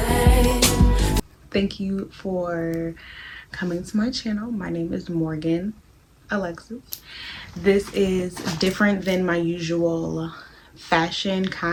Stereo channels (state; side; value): identical; both; correlation 1.00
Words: Thank you for coming to my channel. My name is Morgan Alexis. This is different than my usual fashion